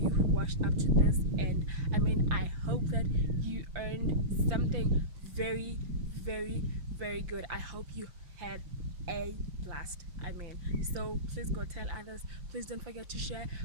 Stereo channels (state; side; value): late; left; 5.8 ms